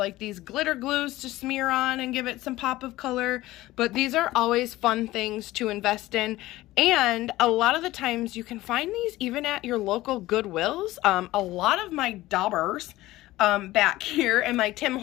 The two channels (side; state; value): right; quieter; 17.2 dB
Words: these glitter glues to smear on and give it some pop of color, but these are always fun things to invest in. And a lot of the times you can find these even at your local Goodwills. A lot of my daubers back here and my Tim